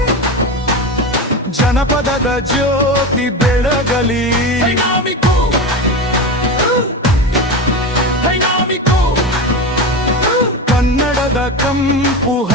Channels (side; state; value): both; normal; correlation 0.22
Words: ಜನಪದದ ಜ್ಯೋತಿ ಬೆಳಗಲಿ, ಕನ್ನಡದ ಕಂಪು